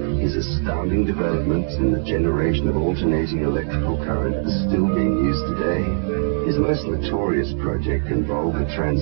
His astounding developments in the generation of alternating electrical current are still being used today. His most notorious project involved the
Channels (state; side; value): silent; left; digital silence